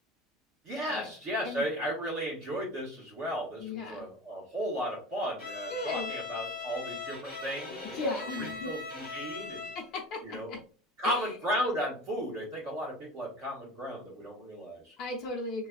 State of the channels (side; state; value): both; normal; correlation 0.34